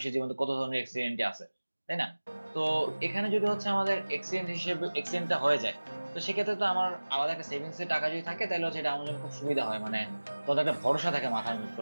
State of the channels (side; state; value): both; inverted; correlation -1.00